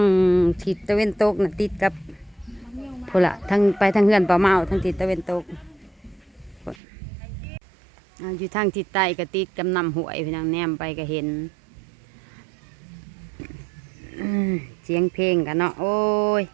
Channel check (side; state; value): left; drops out; at 6.8 s